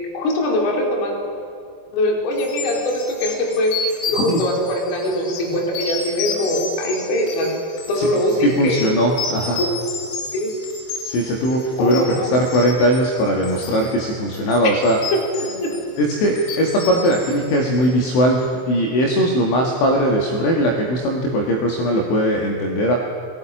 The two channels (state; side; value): late; right; 24 ms